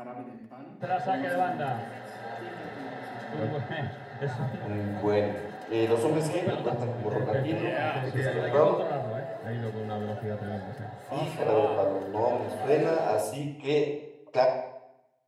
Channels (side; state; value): both; identical; correlation 1.00